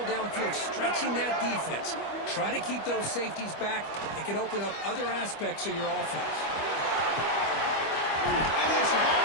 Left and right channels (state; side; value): late; right; 25 ms